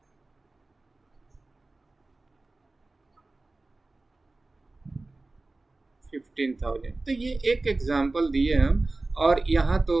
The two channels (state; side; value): quieter; left; 3.2 dB